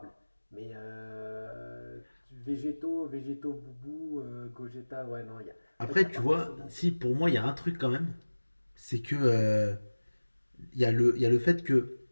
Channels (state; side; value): inverted; both; correlation -1.00